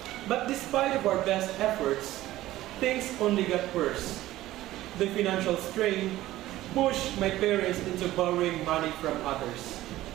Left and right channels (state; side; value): quieter; left; 15.6 dB